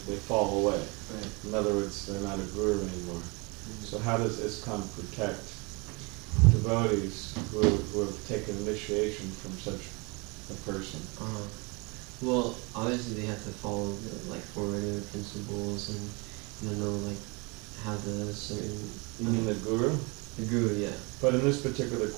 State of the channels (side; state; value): left; quieter; 29.1 dB